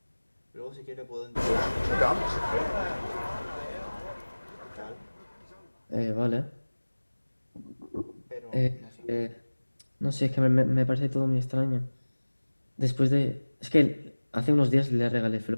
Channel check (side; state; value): both; inverted; correlation -1.00